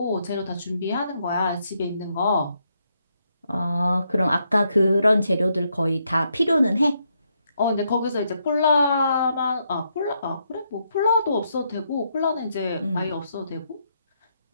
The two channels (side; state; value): both; inverted; correlation -0.77